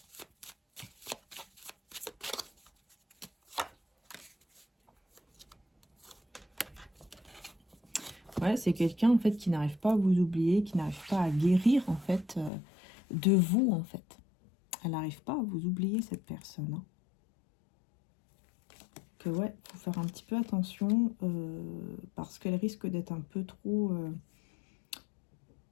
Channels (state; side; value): drops out; right; at 12.5 s